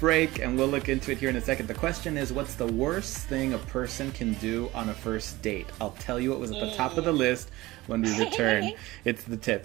and we'll look into it here in a second. The question is, what's the worst thing a person can do on a first date? I'll tell you what was at the top of the list when we return. It's The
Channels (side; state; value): left; quieter; 19.2 dB